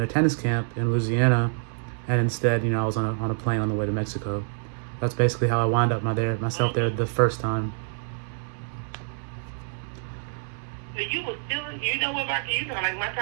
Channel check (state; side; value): silent; left; digital silence